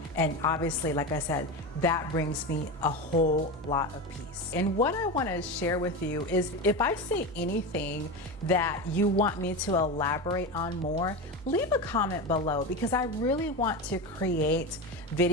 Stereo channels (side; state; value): both; normal; correlation 0.21